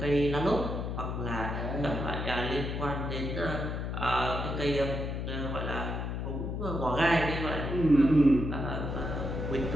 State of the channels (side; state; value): left; noise; hum, 3 dB below the sound